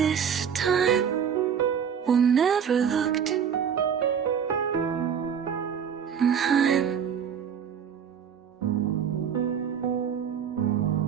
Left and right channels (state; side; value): quieter; left; 7.7 dB